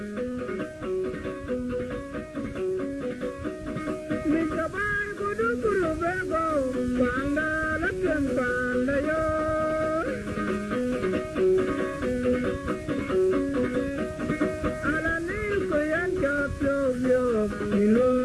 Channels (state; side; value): identical; both; correlation 1.00